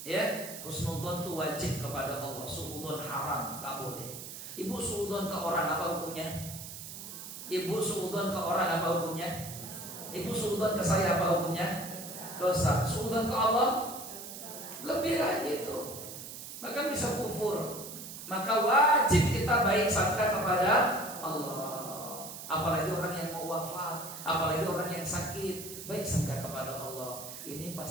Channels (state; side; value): noise; right; hiss, 10 dB below the sound